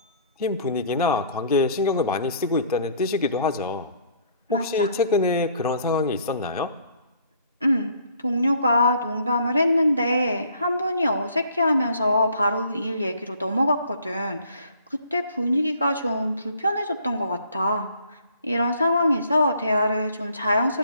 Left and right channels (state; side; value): inverted; both; correlation -0.59